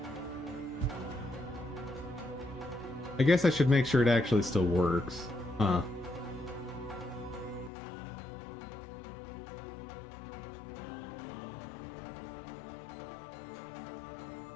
I guess I should make sure it actually still works. Huh.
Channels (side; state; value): right; drops out; at 7.7 s